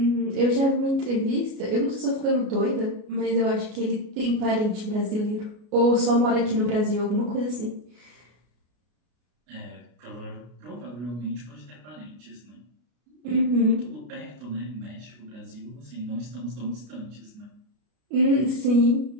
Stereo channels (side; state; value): left; late; 33 ms